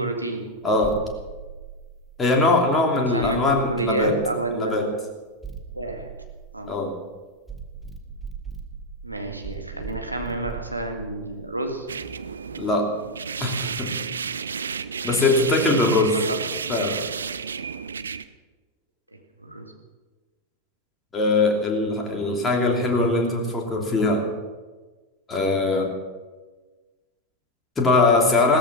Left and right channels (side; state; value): both; normal; correlation 0.08